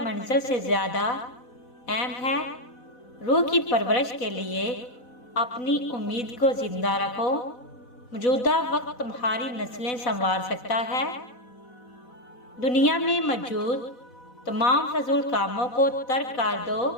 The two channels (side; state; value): right; late; 4.0 ms